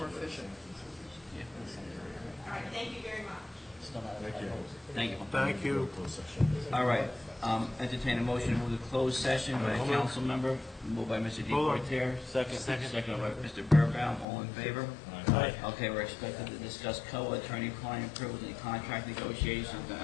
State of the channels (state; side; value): drops out; right; at 14.2 s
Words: efficient. All right, thank you very much. Thank you. Thank you. All right, entertain a motion to move to closed session by a council member, moved by Mr. Hold on. Deportaire. Second. Second by Mr. Burbaum, all in favor? Aye. Okay, we're expected to discuss COA attorney-client privilege and contract negotiations, and